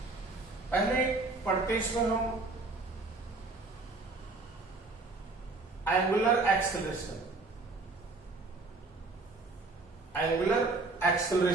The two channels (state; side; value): quieter; left; 3.5 dB